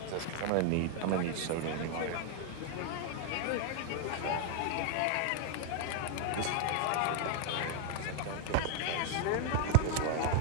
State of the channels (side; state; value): both; different; correlation 0.00